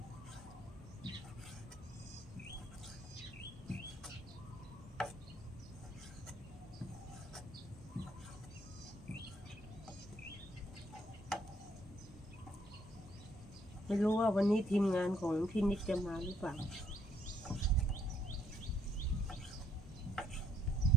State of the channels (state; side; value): normal; both; correlation 0.69